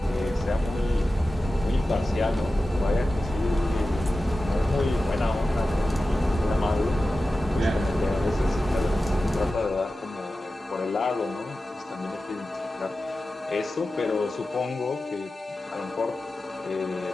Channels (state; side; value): normal; both; correlation 0.94